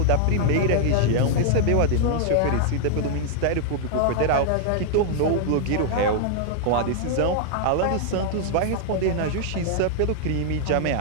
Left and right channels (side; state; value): both; different; correlation -0.01